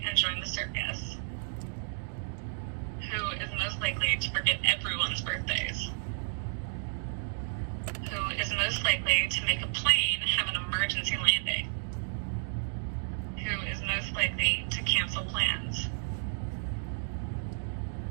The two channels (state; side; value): silent; left; digital silence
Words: and join the circus? Who is most likely to forget everyone's birthdays? Who is most likely to make a plane have an emergency landing? Who is most likely to cancel plans?